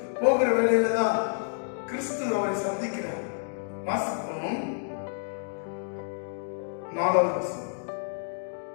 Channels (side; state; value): right; silent; digital silence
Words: போகிற வேளையில தான் கிறிஸ்து அவரை சந்திக்கிறார். வாசிப்போம் 4வது வசனம்.